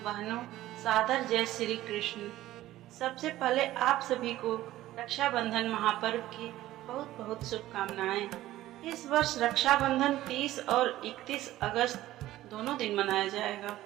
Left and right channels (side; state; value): left; quieter; 15.1 dB